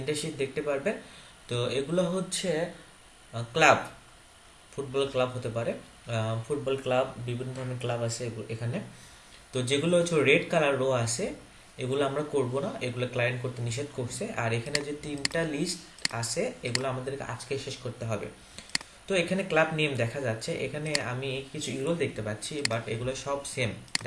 শীট দেখতে পারবেন। তো এগুলো হচ্ছে ক্লাব, ফুটবল ক্লাব হতে পারে। ফুটবল ক্লাব, বিভিন্ন ধরনের ক্লাব আছে এখানে। তো যেগুলো হচ্ছে রেড কালার রো আছে, এগুলো আমরা করব না, এগুলো ক্লায়েন্ট করতে নিষেধ করছে। আর এখানে যে তিনটা লিস্ট আছে, এগুলো আমাদেরকে আজকে শেষ করতে হবে। তো এখানে ক্লাব নেম দেখা যাচ্ছে, এখানে আমি কিছু ইউরো দেখতে পাচ্ছি, বাট এগুলো সব সেম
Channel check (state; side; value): identical; both; correlation 1.00